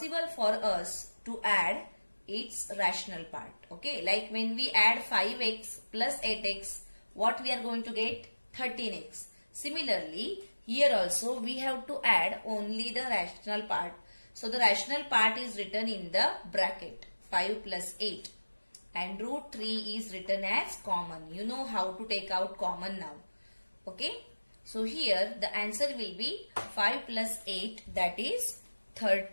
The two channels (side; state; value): both; inverted; correlation -1.00